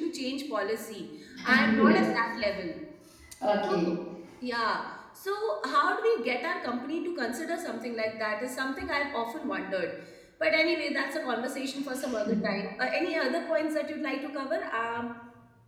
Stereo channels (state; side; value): identical; both; correlation 1.00